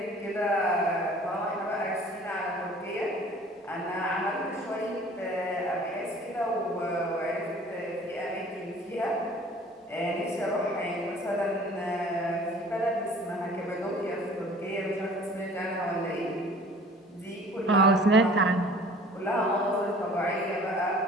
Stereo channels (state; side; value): normal; both; correlation 0.49